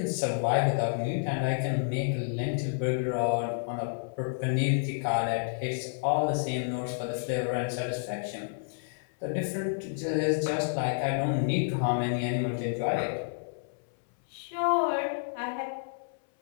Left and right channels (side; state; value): right; silent; 58 dB below the other